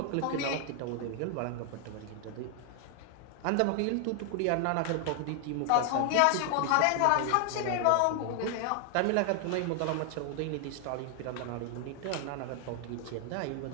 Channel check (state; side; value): different; both; correlation 0.00